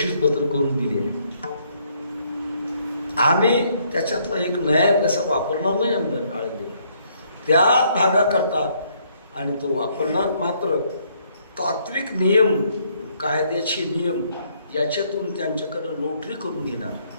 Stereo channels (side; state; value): both; inverted; correlation -0.68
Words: करून दिली आहे. आम्ही त्याच्यातला एक नया पैसा वापरणार नाही आमदार आळंदी त्या भागाकरता, आणि तो वापरणार मात्र तात्विक नियम, कायद्याचे नियम याच्यातून त्यांच्याकडं नोटरी करून घेणार.